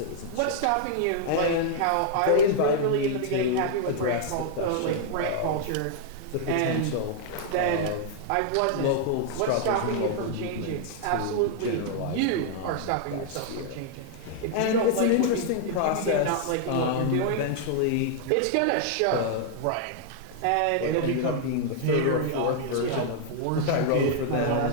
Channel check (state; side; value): different; both; correlation -0.01